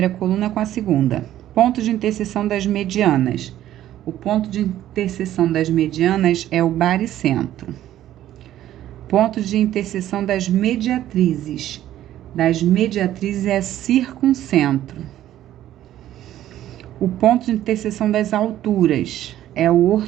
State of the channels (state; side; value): quieter; left; 12.7 dB